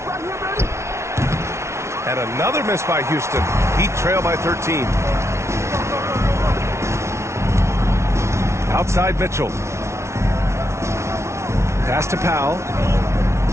And another miss by Houston. Heat trail by 13. Outside Mitchell. Pass to Powell.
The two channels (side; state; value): left; late; 0.13 ms